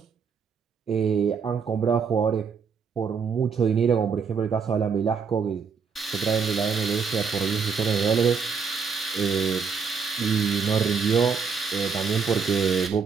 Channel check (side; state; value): left; quieter; 5.9 dB